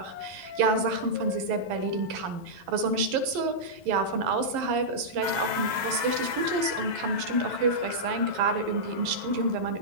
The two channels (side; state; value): left; late; 11 ms